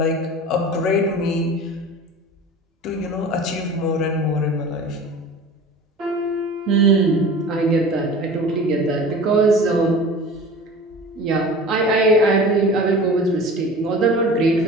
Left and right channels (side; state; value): both; normal; correlation 0.39